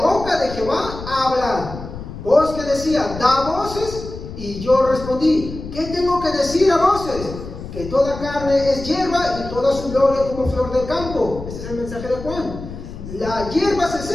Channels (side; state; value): left; noise; rumble, 11 dB below the sound